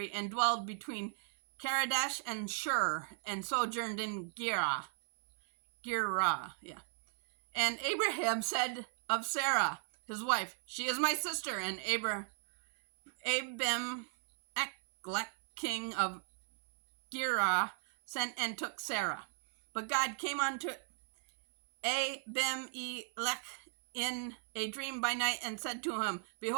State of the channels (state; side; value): silent; left; 54 dB below the other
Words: and dwelled between Kadesh and Shur, and sojourned in Gerar. And Abraham said of Sarah, his wife, She is my sister. And Abimelech, king of Gerar, sent and took Sarah. But God came unto Abimelech in a dream by night, and said to him,